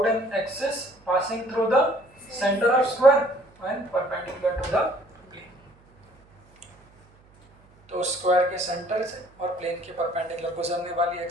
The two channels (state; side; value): noise; right; hum, 29 dB below the sound